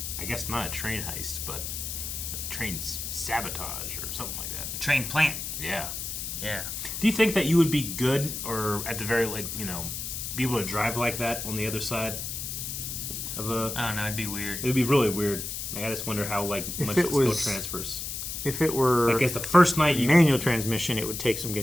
I guess not a train heist, but a train sabotage or something like that. A train plant. Yeah. Yeah. Do you think that you would be good, or at the very, be able to drive like that on the other side of a... I don't know, it'd be weird. It would be really weird. Like, I just wonder how, much the skill transfers. If it were I guess the first night manual transmission, it would take some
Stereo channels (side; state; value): left; noise; hiss, 5 dB below the sound